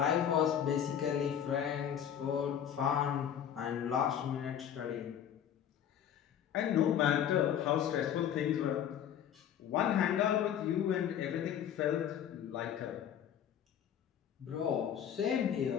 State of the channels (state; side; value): quieter; right; 9.4 dB